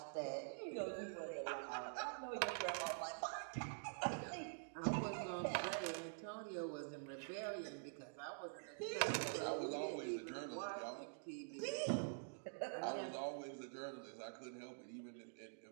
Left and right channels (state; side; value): silent; left; digital silence